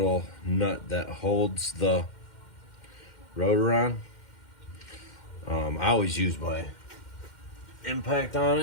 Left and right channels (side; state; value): right; late; 2.1 ms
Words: nut that holds the rotor on. I always use my impact on